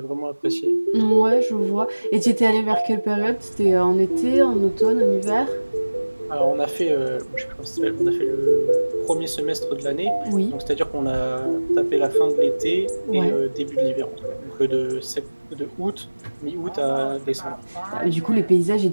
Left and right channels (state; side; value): inverted; both; correlation -1.00